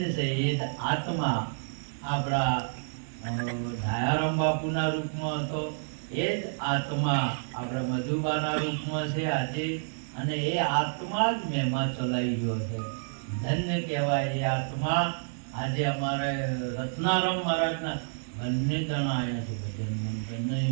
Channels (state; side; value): silent; left; 58 dB below the other